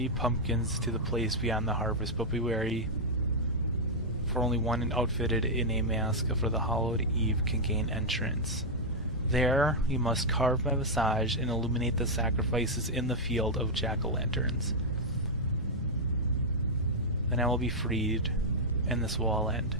pumpkins to the place beyond the harvest, but be wary, for only one outfitted in a mask for the hallowed eve can gain entrance. There you must carve my visage and illuminate the sacrifices in the field of jack-o'-lanterns. Then I will be freed, and this will all end.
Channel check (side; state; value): both; normal; correlation -0.04